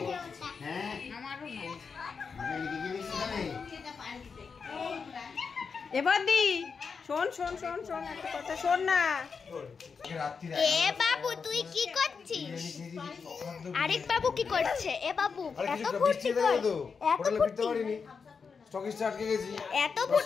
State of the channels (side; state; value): right; quieter; 5.5 dB